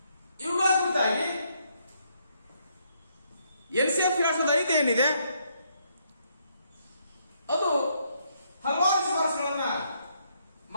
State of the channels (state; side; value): inverted; both; correlation -0.73